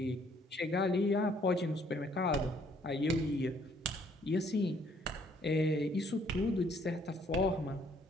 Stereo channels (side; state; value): both; normal; correlation 0.64